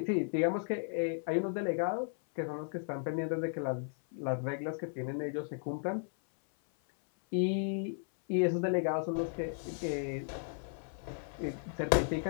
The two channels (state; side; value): silent; right; 54 dB below the other